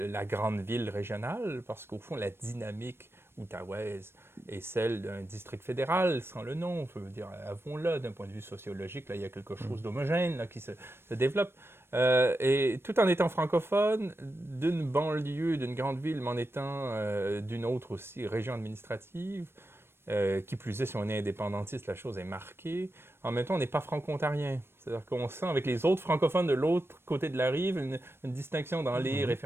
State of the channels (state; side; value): late; left; 0.12 ms